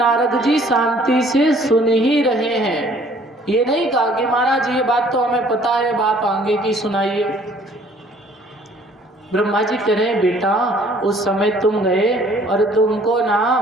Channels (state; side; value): normal; both; correlation 0.57